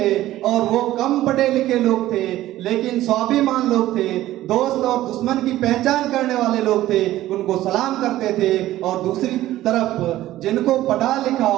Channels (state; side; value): quieter; left; 14.8 dB